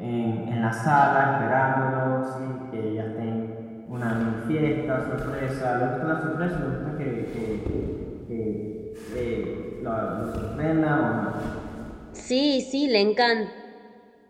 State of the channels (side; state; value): both; identical; correlation 1.00